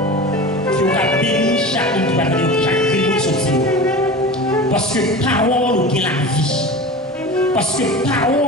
Que nous avons béni chacun qui va attendre chaque réunion de sortir. Parce que parole nous gagne la vie. Parce que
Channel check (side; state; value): both; normal; correlation 0.33